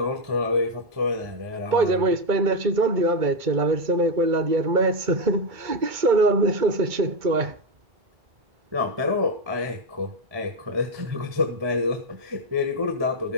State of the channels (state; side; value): late; left; 2.2 ms